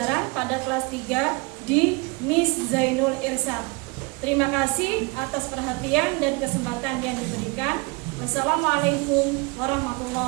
pada kelas 3 di Miss Zainul Irsyad. Terima kasih atas perhatian dan kesempatan yang diberikan. Wassalamualaikum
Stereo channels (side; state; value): left; quieter; 28.1 dB